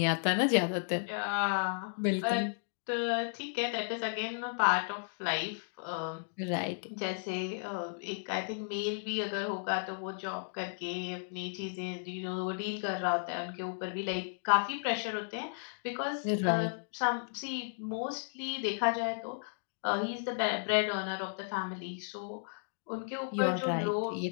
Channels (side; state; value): right; silent; digital silence